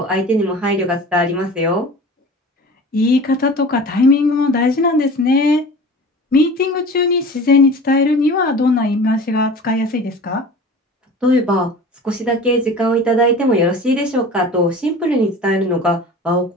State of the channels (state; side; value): normal; both; correlation 0.39